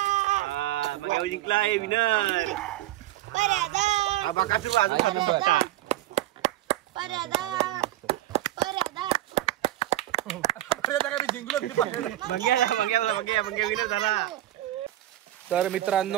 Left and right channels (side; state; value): left; quieter; 14.7 dB